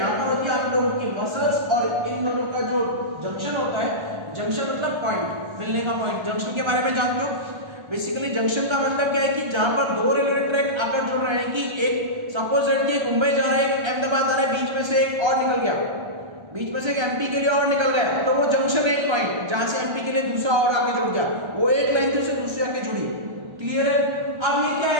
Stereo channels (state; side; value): late; left; 1.3 ms